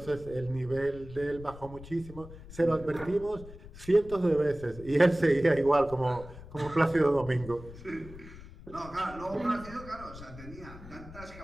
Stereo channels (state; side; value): noise; left; rumble, 16 dB below the sound